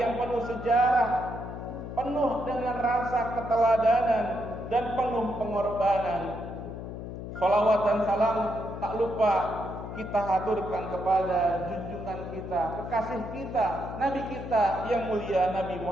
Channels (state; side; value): noise; left; hum, 8 dB below the sound